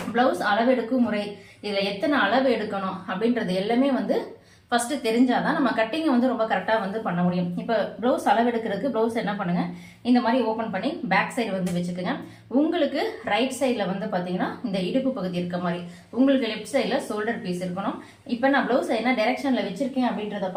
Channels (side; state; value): both; identical; correlation 1.00